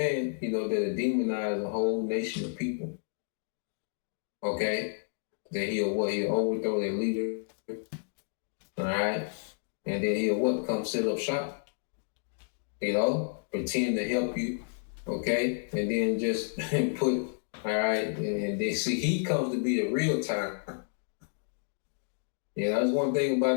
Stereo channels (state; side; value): silent; right; digital silence